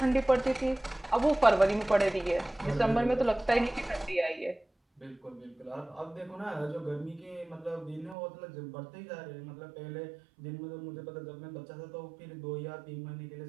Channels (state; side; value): drops out; left; at 8.2 s